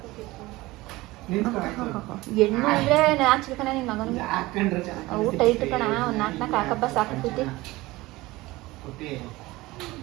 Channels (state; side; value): quieter; left; 19.8 dB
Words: ಹೆಣ್ಣು ಅಂದ್ರೆ ಹಾಕ್ಸ್ಬೇಕಣ್ಣ ನಿನ್ನ ಮಗನಿಗೆ. ಊಟ ಇಟ್ಟು ಕಣ ಒಂದು 4 ಹಾಕಬ್ಬ ಸಾಕೈತಿ.